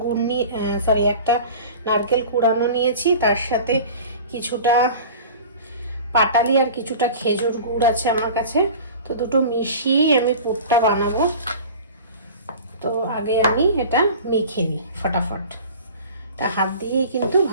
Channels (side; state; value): both; inverted; correlation -0.39